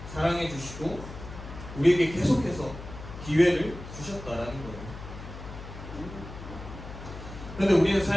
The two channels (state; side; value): noise; left; hum, 12 dB below the sound